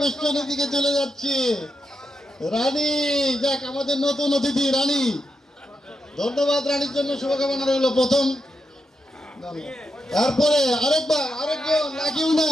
দিকে চলে যাচ্ছি। রানী, যাক আমাদের নতুন অতিথি রানী। ধন্যবাদ রানীর জন্য, শুভকামনা রইল। প্রথম, তারপরে আরেকবার, আরেকজন লাগিও না।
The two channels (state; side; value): normal; both; correlation 0.85